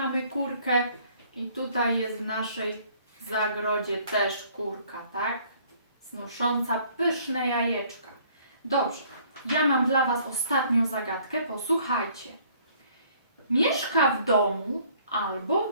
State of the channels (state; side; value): inverted; both; correlation -0.59